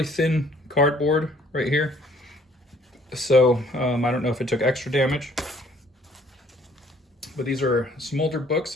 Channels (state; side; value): normal; both; correlation 0.59